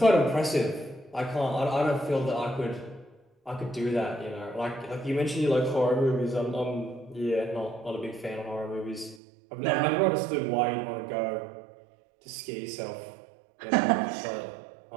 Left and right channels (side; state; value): left; drops out; at 9.2 s